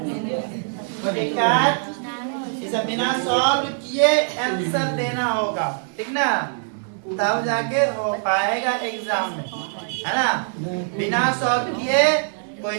तो दिक्कत इसे बिना सॉल्व किए आंसर देना होगा, ठीक ना, तब जाके हो पाएगा एग्जाम में, है ना। बिना सॉल्व किए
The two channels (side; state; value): left; silent; 59 dB below the other